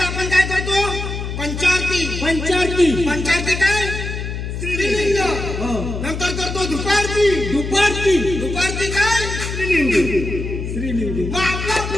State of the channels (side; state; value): left; noise; hum, 5 dB below the sound